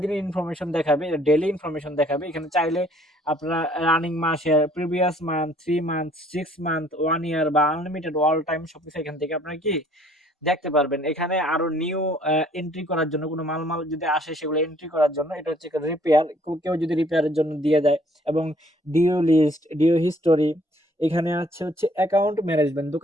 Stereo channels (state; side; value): normal; both; correlation 0.60